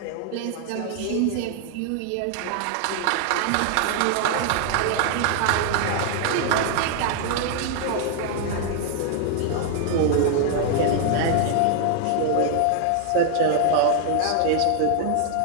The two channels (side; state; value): both; different; correlation 0.00